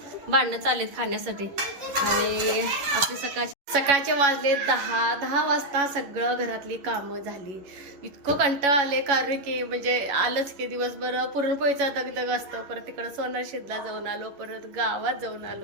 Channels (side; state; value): left; late; 11 ms